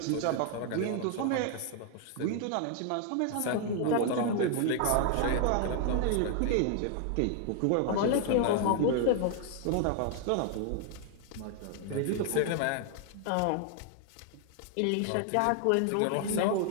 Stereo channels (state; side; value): different; both; correlation 0.00